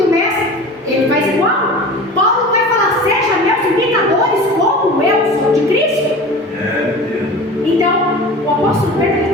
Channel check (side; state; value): both; normal; correlation 0.36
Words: mestre, ele faz igual. Paulo vai falar: seja meus imitadores como eu sou de Cristo. Então, o apóstolo Pedro